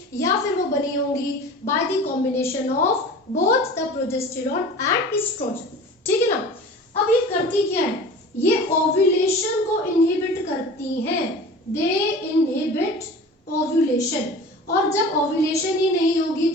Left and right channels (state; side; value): normal; both; correlation 0.39